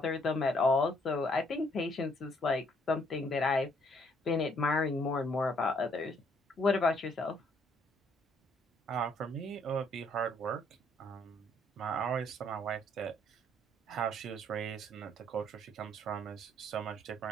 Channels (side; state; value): both; normal; correlation 0.67